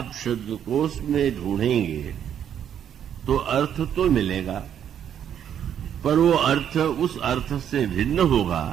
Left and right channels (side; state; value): left; quieter; 9.3 dB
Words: शब्दकोश में ढूंढेंगे तो अर्थ तो मिलेगा, पर वो अर्थ उस अर्थ से भिन्न